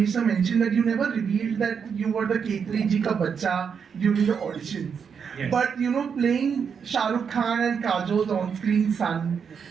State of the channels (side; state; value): left; quieter; 6.7 dB